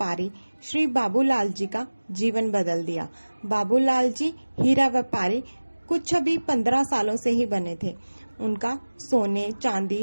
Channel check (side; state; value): both; inverted; correlation -1.00